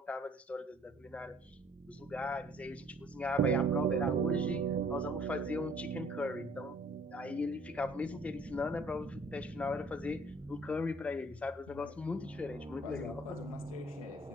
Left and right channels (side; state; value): both; normal; correlation 0.58